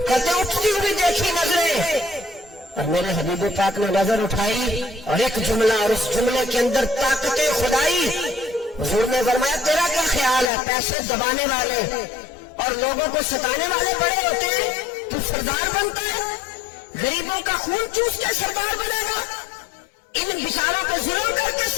कहते उठती हुई देखी नजरें, और मेरे हबीब पाक ने नजर उठाई और एक जुमला, और उस जुमले के अंदर ताकते खुदाई। हुजूर ने फरमाया तेरा क्या ख्याल है, पैसे दबाने वाले और लोगों को सताने वाले बड़े होते हैं, तू सरदार बनता है, गरीबों का खून चूस के सरदार बनेगा, इन बिचारों को जुल्म करके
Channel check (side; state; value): right; drops out; at 10.5 s